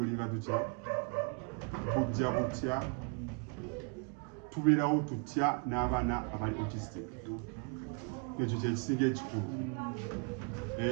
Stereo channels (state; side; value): quieter; left; 34.2 dB